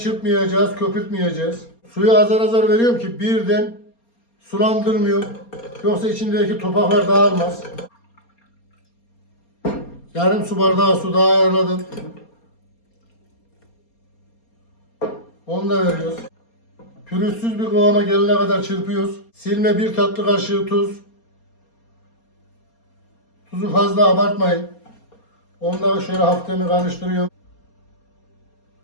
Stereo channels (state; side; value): late; right; 4.3 ms